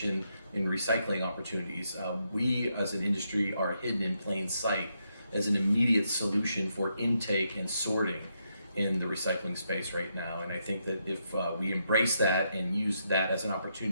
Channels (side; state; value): both; inverted; correlation -0.80